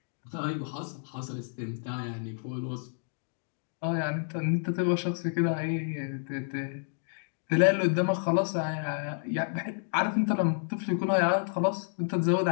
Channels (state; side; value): silent; right; digital silence